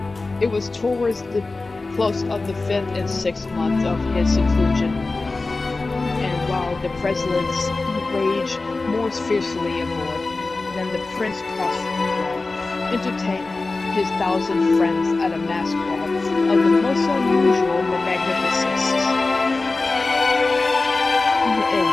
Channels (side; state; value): right; quieter; 3.5 dB